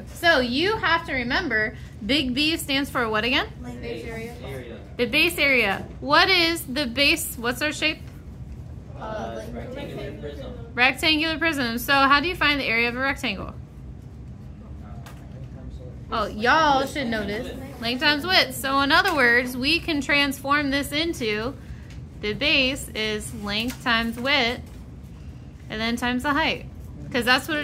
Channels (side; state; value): both; identical; correlation 1.00